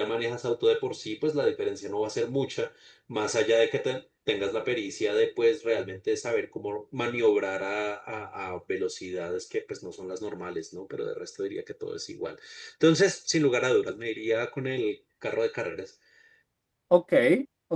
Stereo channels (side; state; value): both; identical; correlation 1.00